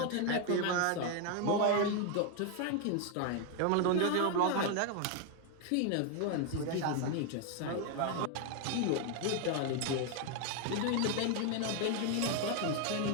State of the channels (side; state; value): both; different; correlation 0.01